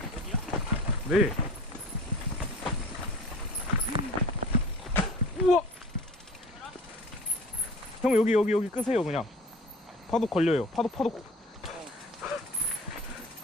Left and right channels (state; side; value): normal; both; correlation 0.42